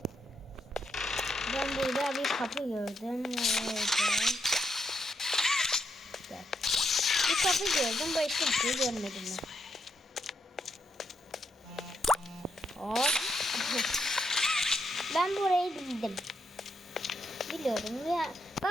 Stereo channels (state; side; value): normal; both; correlation 0.79